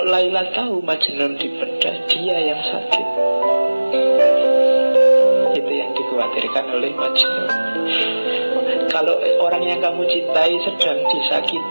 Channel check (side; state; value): both; inverted; correlation -1.00